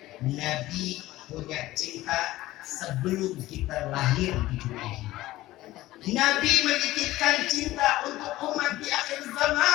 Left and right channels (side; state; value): right; quieter; 16.7 dB